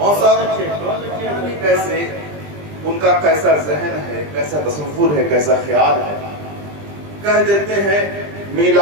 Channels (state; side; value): late; left; 20 ms